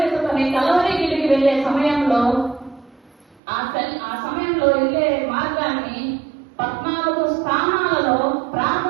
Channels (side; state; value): left; drops out; at 3.4 s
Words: కలవరిగిరికి వెళ్లే సమయంలో ఆ సమయంలో వెళ్లే మార్గాన్ని 14 స్థానాలలో